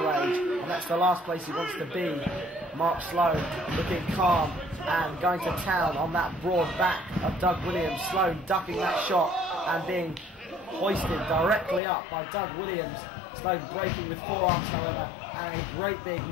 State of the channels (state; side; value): drops out; right; at 11.8 s